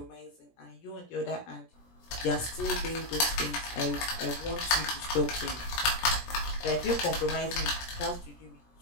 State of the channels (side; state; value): right; late; 17 ms